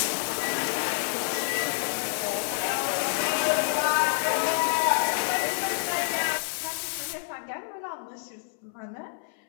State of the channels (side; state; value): right; silent; 59 dB below the other